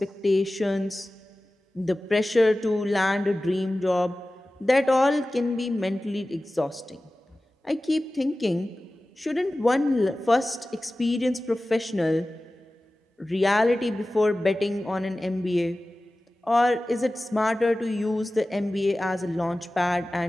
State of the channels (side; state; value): both; normal; correlation 0.96